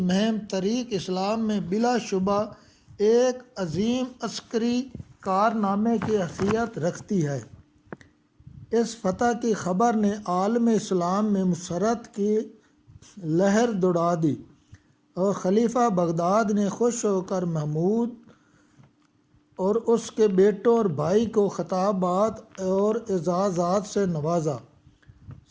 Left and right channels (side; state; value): both; identical; correlation 1.00